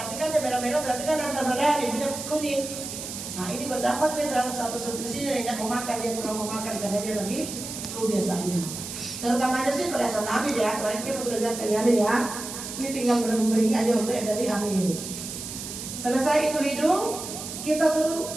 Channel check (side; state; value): right; noise; hiss, 8 dB below the sound